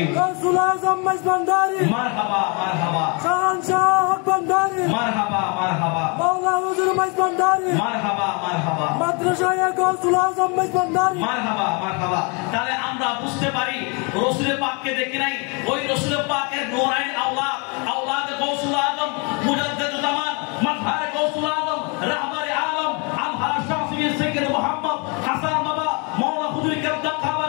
গাউসুল আজম মেজবান্ডারি, মারহাবা মারহাবা, শাহনশাহ হক ভান্ডারি, মারহাবা মারহাবা, মাওলা হুজুর মেজবান্ডারি, মারহাবা মারহাবা, মাদ্রাসায়ে গাউসুল আজম মেজবান্ডারি, মারহাবা মারহাবা। তাহলে আমরা বুঝতে পারি রাসূল পাককে দেখি নাই, ওই রাসূল পাকের নূরাইন আওলাদ, আওলাদ গাউসুল আজম, মুজাদ্দিদুল জামান, মাযহার গাউসুল আজম, রাহবারে আলম, আলহাজ শাফিঈ সাইয়্যিদ মুহাম্মদ হাসান বাবা, মাওলা হুজুর কেবলা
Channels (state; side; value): quieter; right; 32.5 dB